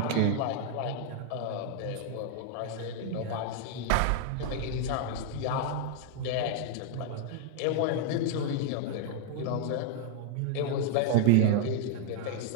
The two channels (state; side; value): different; both; correlation 0.00